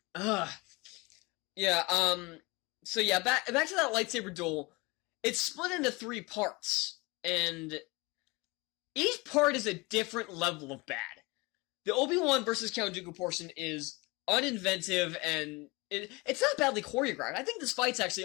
yeah, so yeah, back to that lightsaber duel. It's split into 3 parts, and each part is a different level of bad. The Obi-Wan versus Count Dooku portion is uninventive, and it's not badly choreographed. I think this fight's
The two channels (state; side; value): quieter; right; 25.1 dB